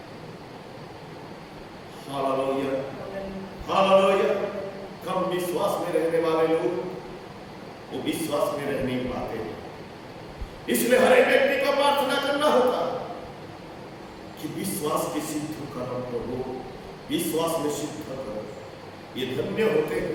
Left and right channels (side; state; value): both; identical; correlation 1.00